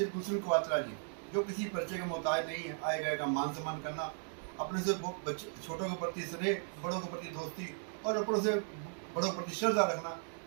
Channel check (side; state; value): left; silent; 53 dB below the other